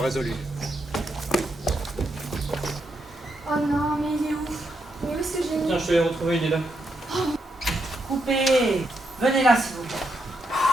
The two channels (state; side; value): normal; both; correlation 0.80